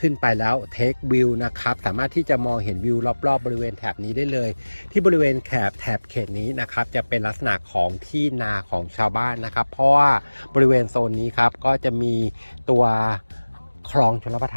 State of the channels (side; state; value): both; inverted; correlation -1.00